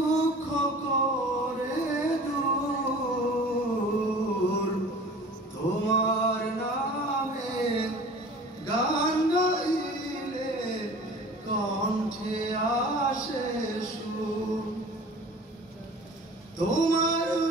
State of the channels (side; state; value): both; normal; correlation 0.43